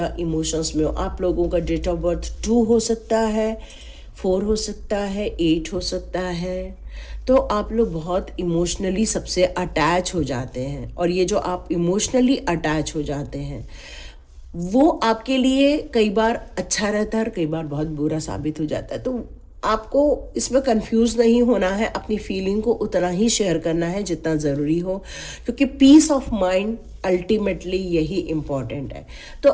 इमोशंस में हो। आप लोगों का डेट ऑफ बर्थ 2 हो सकता है, 4 हो सकता है, 8 हो सकता है। तो आप लोग बहुत इमोशनली सबसे अटैच हो जाते हैं और ये जो आप इमोशनली अटैच हो जाते हैं वो आपके लिए कई बार अच्छा रहता है और कई बार बहुत बुरा साबित हो जाता है। तो आपको इसमें कंफ्यूज नहीं होना है, अपनी फीलिंग को उतना ही शेयर करना है जितना ज़रूरी हो, क्योंकि पीस ऑफ माइंड अल्टीमेटली यही इम्पॉर्टेंट है। तो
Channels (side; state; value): both; identical; correlation 1.00